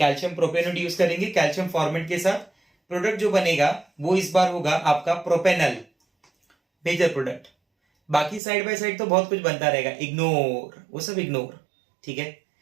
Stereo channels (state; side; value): drops out; left; at 8.4 s